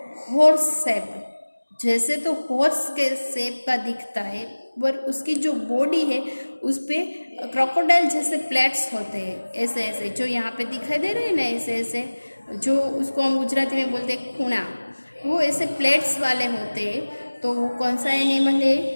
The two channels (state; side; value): inverted; both; correlation -1.00